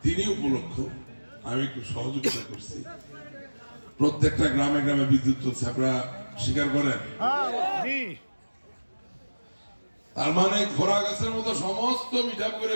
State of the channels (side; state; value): both; inverted; correlation -1.00